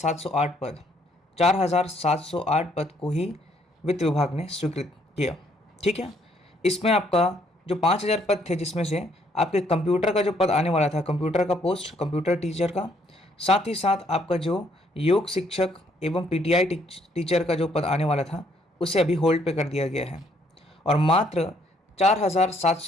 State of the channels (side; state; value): both; normal; correlation 0.68